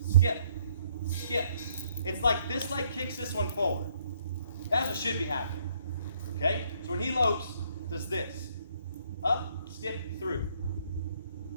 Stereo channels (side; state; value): both; inverted; correlation -0.66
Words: Skip. Skip. It's like this leg kicks this one forward. That's what should be happening. Okay? So when he lopes, does this. Up, skip, through.